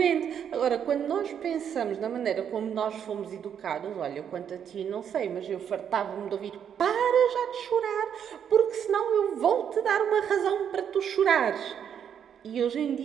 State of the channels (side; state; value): left; quieter; 8.4 dB